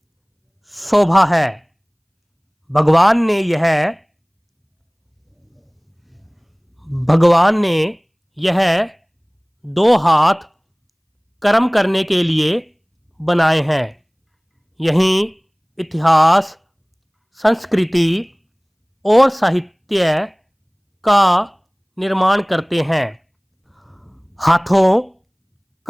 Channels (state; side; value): identical; both; correlation 1.00